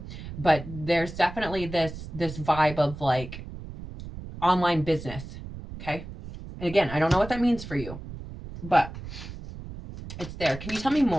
but there's definitely this vibe of like online business, okay? And again, I don't know what that means for you, but It's there. Can you tell me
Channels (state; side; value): noise; right; rumble, 11 dB below the sound